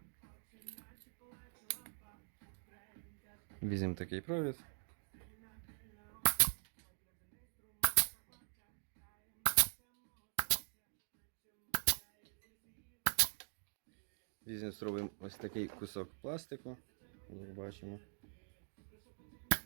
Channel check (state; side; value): silent; left; digital silence